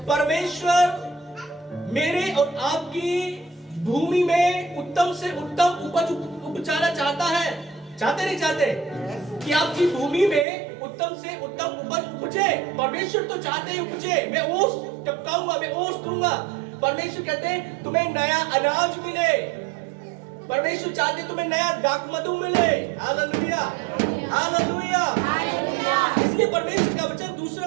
परमेश्वर मेरे और आपकी भूमि में उत्तम से उत्तम उपज उपजाना चाहता है। चाहते नहीं चाहते कि आपकी भूमि में उत्तम से उत्तम उपज उपजे? परमेश्वर तो चाहते हैं उपजे। मैं ओस टपकाऊंगा, मैं ओस दूंगा। परमेश्वर कहते हैं तुम्हें नया अनाज मिले। परमेश्वर चाहते तुम्हें नया दाखमधु मिले। Hallelujah, hallelujah. इसलिए परमेश्वर का वचन 2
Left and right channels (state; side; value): drops out; left; at 10.5 s